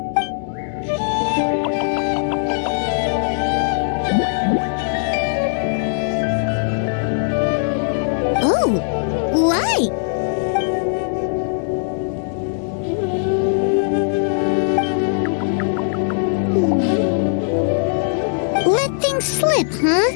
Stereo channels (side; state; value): right; silent; digital silence